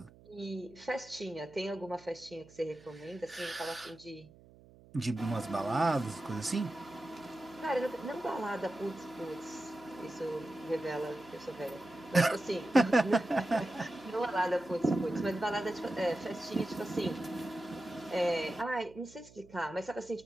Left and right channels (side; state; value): right; noise; hum, 23 dB below the sound